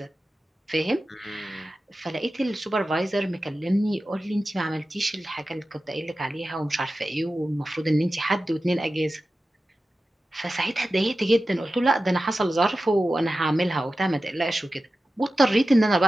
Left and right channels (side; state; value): both; normal; correlation 0.94